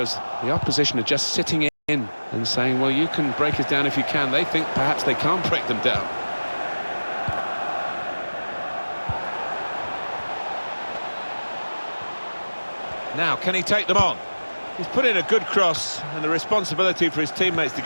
the opposition are just sitting in and saying, well, you can break us down if you can. They think perhaps they can't break them down. Now, can he take them on? He's put in a good cross, and the responsibility for his teammates to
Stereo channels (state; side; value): inverted; both; correlation -1.00